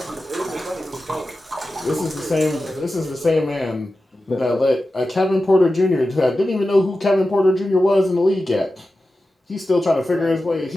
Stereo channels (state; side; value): normal; both; correlation 0.93